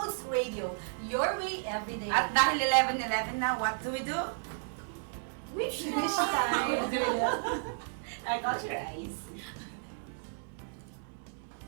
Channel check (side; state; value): left; silent; digital silence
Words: Radio, your way every day. At dahil 11:11 na, what do we do? Wish time. I got your eyes.